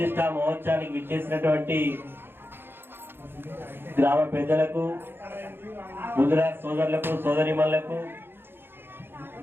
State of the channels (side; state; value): left; late; 0.10 ms